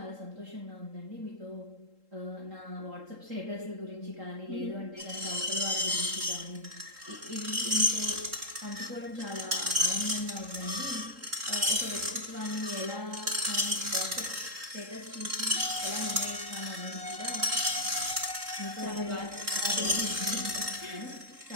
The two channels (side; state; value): left; late; 3.8 ms